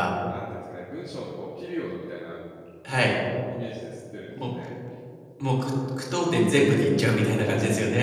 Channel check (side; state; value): both; identical; correlation 1.00